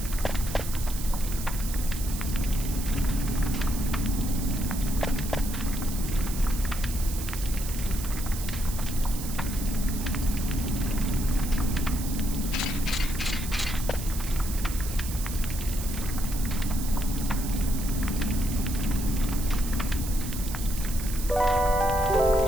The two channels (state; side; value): noise; right; hiss, 9 dB below the sound